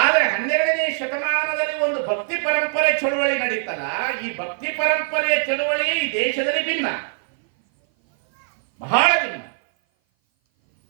12ನೇ ಶತಮಾನದಲ್ಲಿ ಒಂದು ಭಕ್ತಿ ಪರಂಪರೆ ಚಳುವಳಿ ನಡೀತಲ್ಲ, ಈ ಭಕ್ತಿ ಪರಂಪರೆಯ ಚಳುವಳಿ ಈ ದೇಶದಲ್ಲಿ ಭಿನ್ನ, ಬಹಳ ಭಿನ್ನ.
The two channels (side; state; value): left; silent; 57 dB below the other